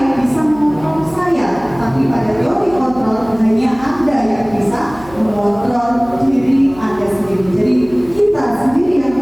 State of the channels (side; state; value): right; noise; hum, 20 dB below the sound